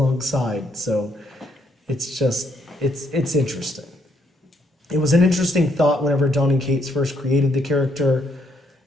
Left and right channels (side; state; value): both; normal; correlation 0.72